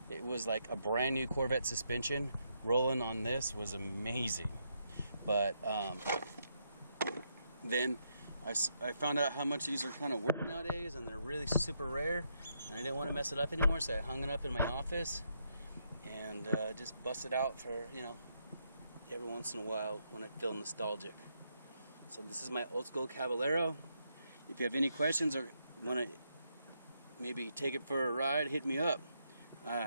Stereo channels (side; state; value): both; inverted; correlation -0.78